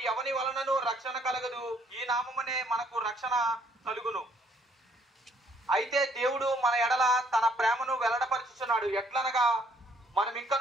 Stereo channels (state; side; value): normal; both; correlation 0.65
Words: ఎవని వలనను రక్షణ కలగదు, ఈ నామమునే మనకు రక్షణ కలుగును. అయితే దేవుడు మన ఎడల తన ప్రేమను వెల్లడపరచుచున్నాడు. ఎట్లనగా మనం